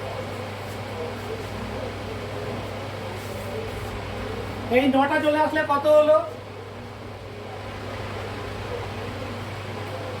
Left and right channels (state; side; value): identical; both; correlation 1.00